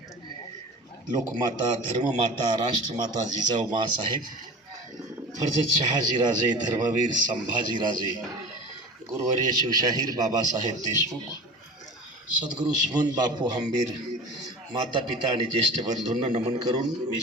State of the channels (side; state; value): both; normal; correlation 0.36